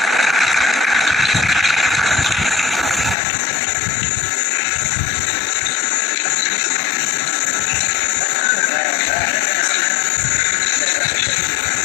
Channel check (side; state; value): right; drops out; at 3.2 s